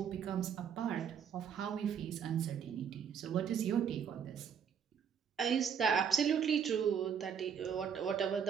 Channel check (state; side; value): quieter; left; 7.5 dB